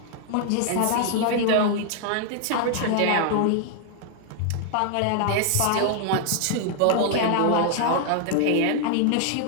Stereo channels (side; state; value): both; different; correlation 0.00